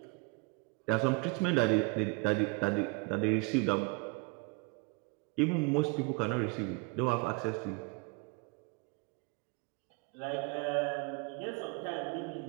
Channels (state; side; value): quieter; left; 29.3 dB